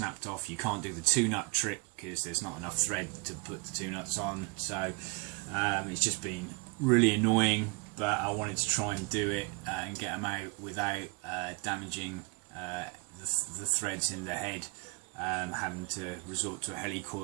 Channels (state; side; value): quieter; left; 30.4 dB